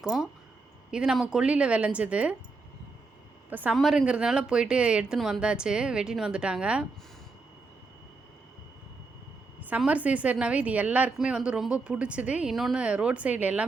இது நம்ம கொல்லியில் விளைஞ்சது. இப்போ சம்மருங்கிறதுனால போயிட்டு எடுத்துன்னு வந்தாச்சு, வெட்டின்னு வந்துட்டாங்க. சம்மர் சீசன்னாவே இது எல்லாருக்குமே ரொம்ப பிடிச்சது. இன்னொன்று ரோட் சைடில்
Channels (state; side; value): quieter; left; 3.9 dB